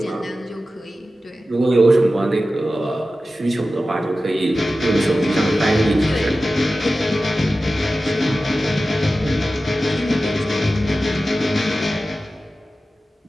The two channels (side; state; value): both; normal; correlation 0.94